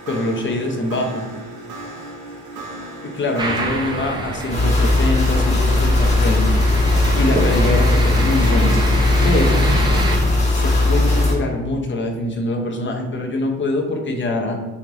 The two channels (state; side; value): normal; both; correlation 0.70